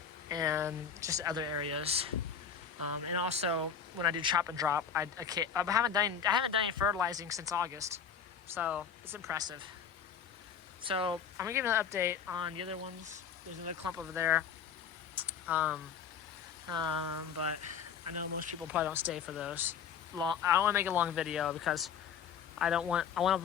and just other areas. And also, when I do chop and drop, I haven't done any fertilizing since August, so it's impressive. So I'm gonna give you an update on the other ones. There's another clump over there, but I know most people probably don't stay for those. I don't want to make a long video because I want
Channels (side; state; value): right; quieter; 7.2 dB